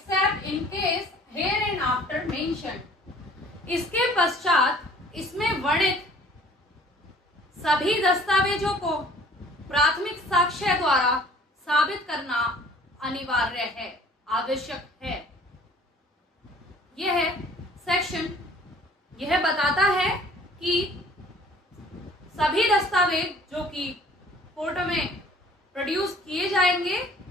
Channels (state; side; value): normal; both; correlation 0.52